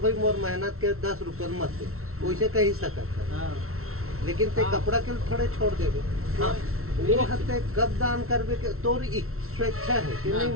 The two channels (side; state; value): left; late; 0.63 ms